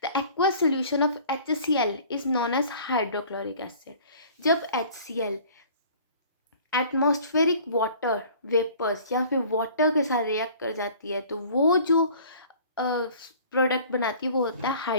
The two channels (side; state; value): both; inverted; correlation -0.49